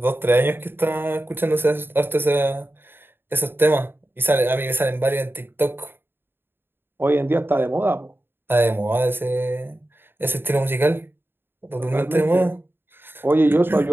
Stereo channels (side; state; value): left; late; 0.10 ms